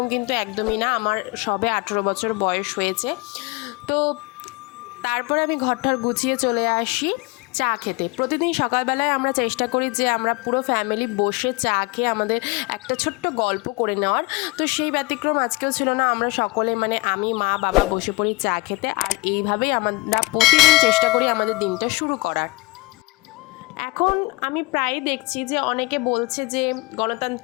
কিন্তু একদমই না, আমার সবে 18 বছর বয়স হয়েছে। তো তারপরে আমি ঘরটার গুছিয়ে চলে আসি চা খেতে। প্রতিদিন সকালবেলায় আমরা চেষ্টা করি যে আমরা পুরো ফ্যামিলি বসে চা খেয়ে আমাদের একটা ছোট্ট গল্প করে নেওয়ার। তো সেই ব্যতিক্রম আজকেও ছিল না। আমরা সকলে, মানে আমি, মা, বাবা বসে পড়ি চা খেতে। আর এইভাবেই আমরা প্রতিদিন চেষ্টা করি আমাদের দিনটা শুরু করার। এখন আমি প্রায়ই দেখছি যে অনেকে বলছে যে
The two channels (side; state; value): right; quieter; 24.3 dB